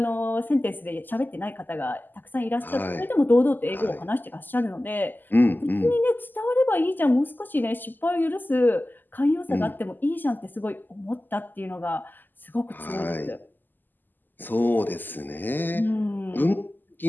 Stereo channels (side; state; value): right; late; 0.088 ms